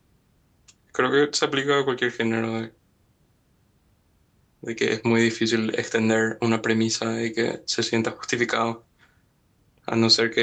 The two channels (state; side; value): identical; both; correlation 1.00